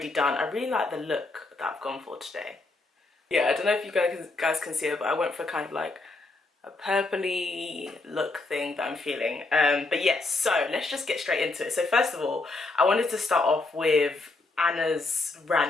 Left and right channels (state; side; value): quieter; right; 3.3 dB